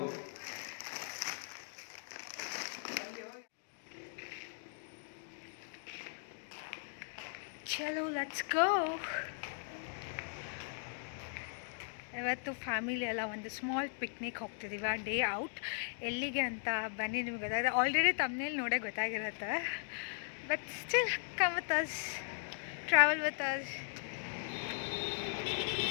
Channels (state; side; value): silent; right; digital silence